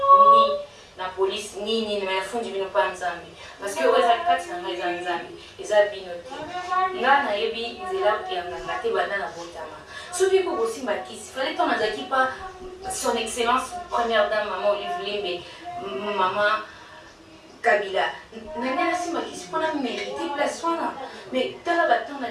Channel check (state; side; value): identical; both; correlation 1.00